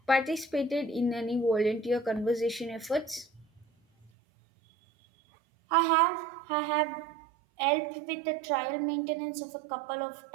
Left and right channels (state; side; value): drops out; left; at 4.1 s